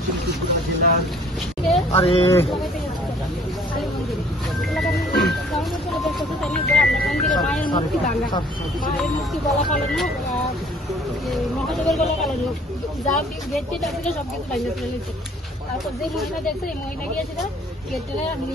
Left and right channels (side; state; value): both; normal; correlation 0.56